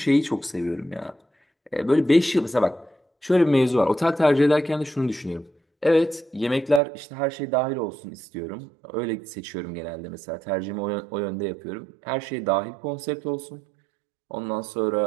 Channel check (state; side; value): drops out; left; at 6.8 s